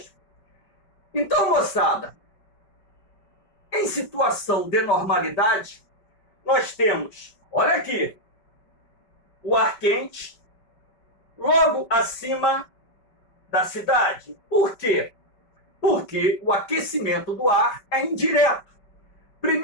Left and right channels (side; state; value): right; late; 5.2 ms